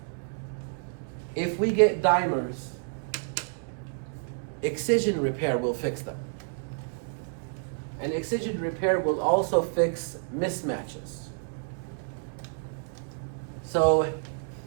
If we get dimers, excision repair will fix them. And excision repair will also fix mismatches. So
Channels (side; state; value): left; silent; digital silence